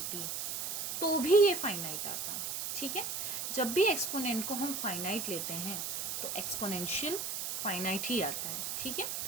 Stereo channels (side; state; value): right; noise; hiss, 2 dB below the sound